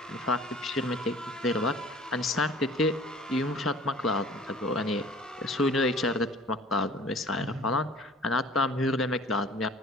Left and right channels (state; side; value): normal; both; correlation 0.48